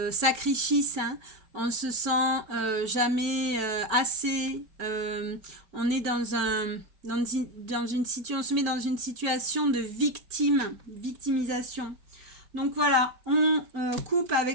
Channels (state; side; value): late; left; 5.1 ms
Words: sacrifice, hein. On se sent jamais assez, on est on se met dans une situation de victimisation. Donc voilà, on coupe